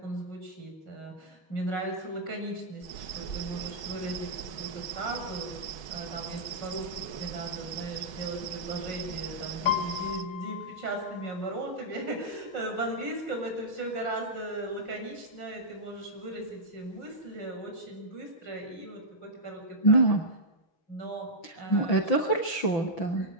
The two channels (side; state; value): right; late; 6.3 ms